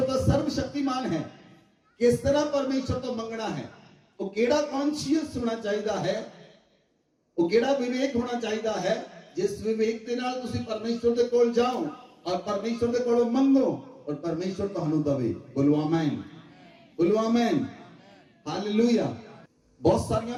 ਤਾਂ ਸਰਵ ਸ਼ਕਤੀਮਾਨ ਹੈ, ਕਿਸ ਤਰ੍ਹਾਂ ਪਰਮੇਸ਼ਵਰ ਤੋਂ ਮੰਗਣਾ ਹੈ? ਉਹ ਕਿਹੜਾ ਕੌਨਸ਼ੀਅਸ ਹੋਣਾ ਚਾਹੀਦਾ ਹੈ, ਉਹ ਕਿਹੜਾ ਵਿਵੇਕ ਹੋਣਾ ਚਾਹੀਦਾ ਹੈ ਜਿਸ ਵਿਵੇਕ ਦੇ ਨਾਲ ਤੁਸੀਂ ਪਰਮੇਸ਼ਵਰ ਦੇ ਕੋਲ ਜਾਓ ਔਰ ਪਰਮੇਸ਼ਵਰ ਦੇ ਕੋਲੋਂ ਮੰਗੋ ਔਰ ਪਰਮੇਸ਼ਵਰ ਤੁਹਾਨੂੰ ਦਵੇ। ਬੋਲੋ ਆਮੇਨ, ਬੋਲੋ ਆਮੇਨ, ਹਾਲੇਲੂਇਆ। ਬਹੁਤ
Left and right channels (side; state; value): both; identical; correlation 1.00